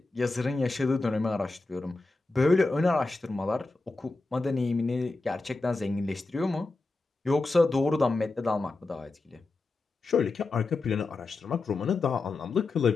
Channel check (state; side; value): quieter; right; 3.4 dB